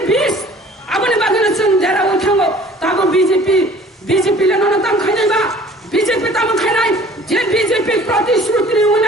বিস আবনি বাগেনে जों দেরা উঠাঙ্গো তাবো বিজেপি লেননা তাম খাইনাইবা বিজেপি তাম খাইনাই যে বিজেপি প্রতিশ্রুতি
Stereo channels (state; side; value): normal; both; correlation 0.50